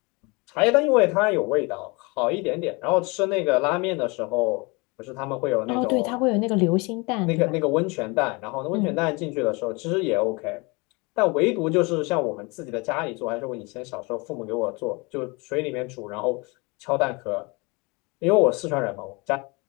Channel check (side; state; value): right; quieter; 27.7 dB